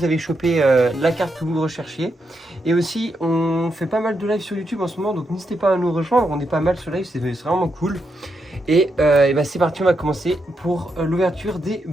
avez chopé la carte que vous recherchiez. Et aussi, on fait pas mal de live sur YouTube en ce moment, donc n'hésitez pas à nous rejoindre, on est pas mal sur live, c'est vraiment cool. Et bah, c'est parti, on va commencer pour l'ouverture des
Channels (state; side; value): normal; both; correlation 0.82